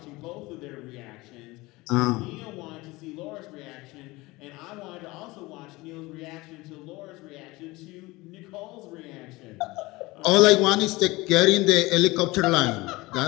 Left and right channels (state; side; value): quieter; right; 21.5 dB